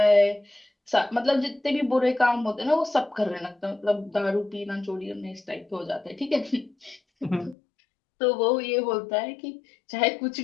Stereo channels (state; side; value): drops out; right; at 7.6 s